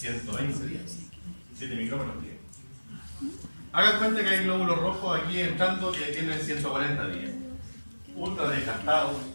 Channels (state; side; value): inverted; both; correlation -1.00